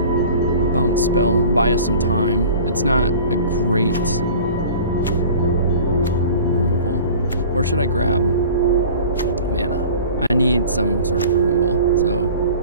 bounce spell. Buy us some time. It's not a great removal. Or should I grab mana? I need some sort of removal, so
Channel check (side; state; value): both; inverted; correlation -0.43